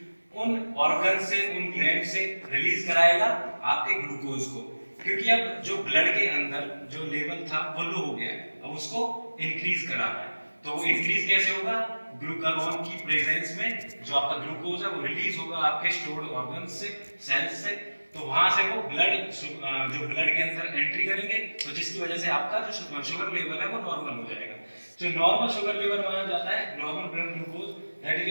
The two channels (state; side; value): inverted; both; correlation -1.00